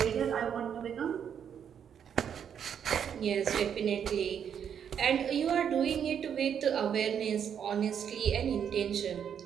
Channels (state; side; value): quieter; left; 8.2 dB